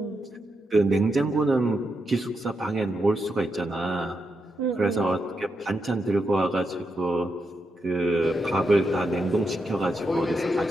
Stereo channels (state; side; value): normal; both; correlation 0.84